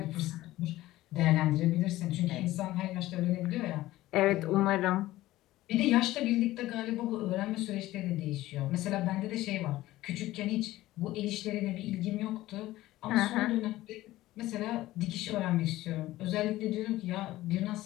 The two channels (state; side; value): quieter; right; 16.4 dB